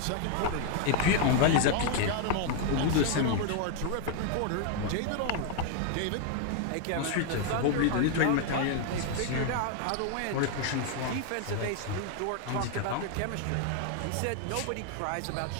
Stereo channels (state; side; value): different; both; correlation 0.00